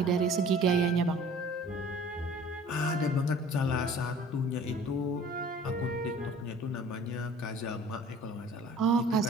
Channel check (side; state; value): both; normal; correlation 0.48